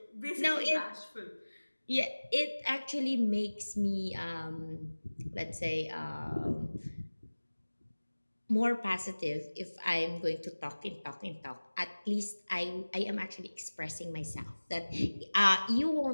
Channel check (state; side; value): inverted; both; correlation -1.00